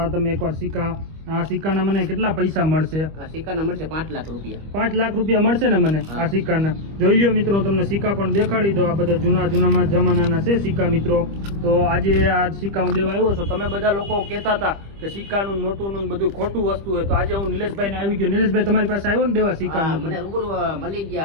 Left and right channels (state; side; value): late; left; 25 ms